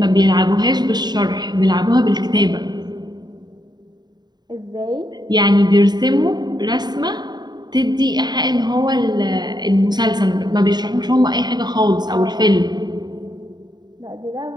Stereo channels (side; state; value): left; late; 0.20 ms